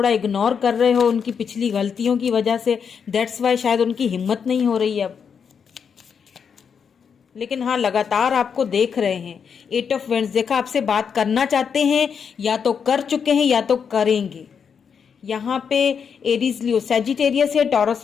इग्नोर कर रहे हो उनकी पिछली गलतियों की वजह से। दैट्स वाई शायद उनकी हिम्मत नहीं हो रही है अब, लेकिन हाँ लगातार आपको देख रहे हैं। 8 ऑफ वेंड्स, देखा आपसे बात करना चाहते हैं, या तो कर चुके हैं या तो करेंगे। यहाँ पे एरीज, लियो, सैजिटेरियस है, taurus,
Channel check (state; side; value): quieter; right; 6.7 dB